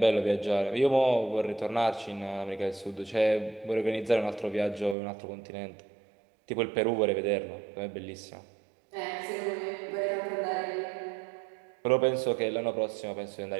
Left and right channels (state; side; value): drops out; left; at 5.0 s